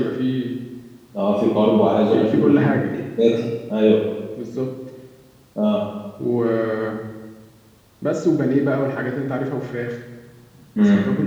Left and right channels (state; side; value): identical; both; correlation 1.00